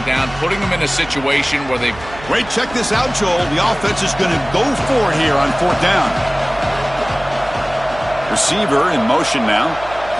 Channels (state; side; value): noise; right; hum, 17 dB below the sound